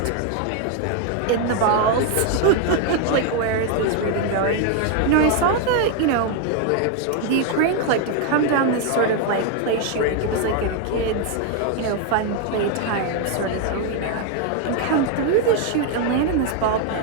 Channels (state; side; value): different; both; correlation 0.01